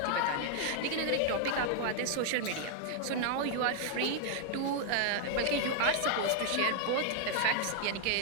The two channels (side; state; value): both; different; correlation 0.00